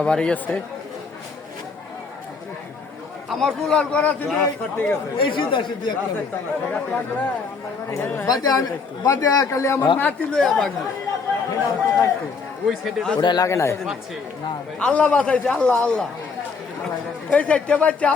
বাড়ি আছে। আমার কুলার করা ছিল এই সিধা সিধি একটা বাদে খালি আমার নাতি লইয়া বাগি ওটা লাগে নাই। আল্লাহ বাঁচাইছে, আল্লাহ এই চারটে বাচ্চা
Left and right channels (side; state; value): right; quieter; 4.9 dB